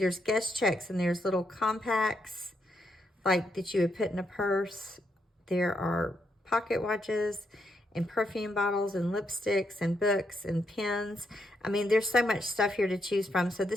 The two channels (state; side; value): normal; both; correlation 0.79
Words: guest checks and there's little compacts like that you would put in a purse. There are pocket watches and perfume bottles and lipsticks and books and pens. I mean, there's so much stuff here to choose from. So